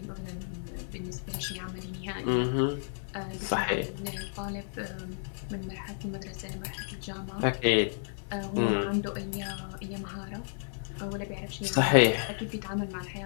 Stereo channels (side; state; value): right; silent; 56 dB below the other